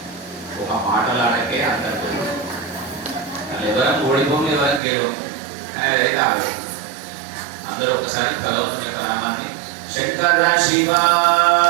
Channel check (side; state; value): left; drops out; at 4.8 s